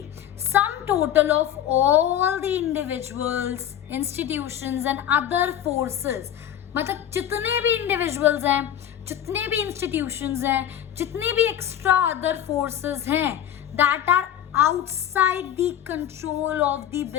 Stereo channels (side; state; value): right; quieter; 10.6 dB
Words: sum total of all the individuals, institutions and other forces, मतलब जितने भी इंडिविजुअल्स हैं, जितने भी इंस्टीट्यूशंस हैं, जितने भी एक्स्ट्रा अदर फोर्सेस हैं, that are outside the control of the